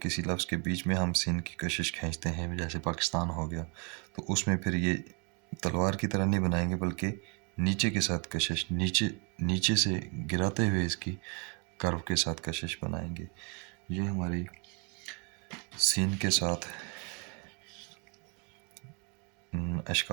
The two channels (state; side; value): quieter; left; 34.7 dB